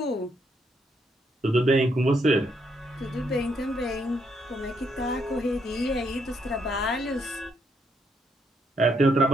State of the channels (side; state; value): both; normal; correlation 0.74